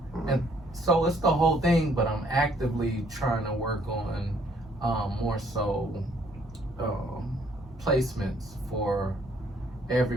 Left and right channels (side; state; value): both; normal; correlation 0.64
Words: And so it's the whole thing, but I'm actively trying to work on more so placements for